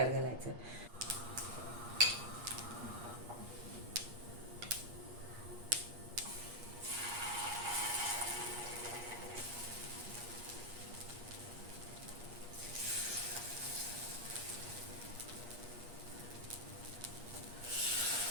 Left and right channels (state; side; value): late; left; 8.4 ms